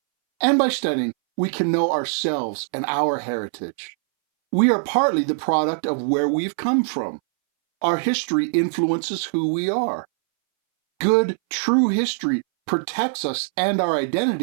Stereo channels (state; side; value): silent; left; 63 dB below the other